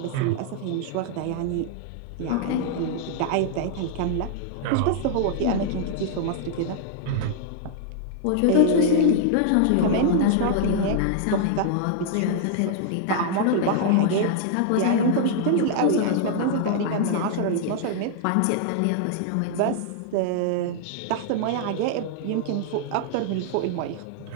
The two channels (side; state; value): both; different; correlation -0.01